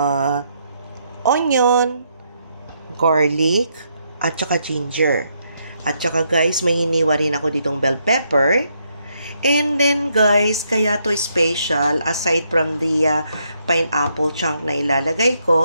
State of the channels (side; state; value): both; inverted; correlation -0.76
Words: onion, garlic, at saka ginger. At saka, guys, may hiniwa rin ako ditong bell pepper. And then guys, kaya to special, aside from the pineapple chunk na ilalagay